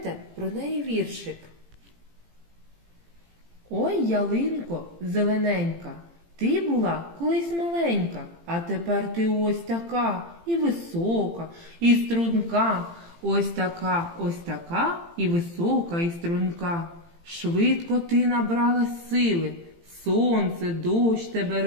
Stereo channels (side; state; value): left; late; 18 ms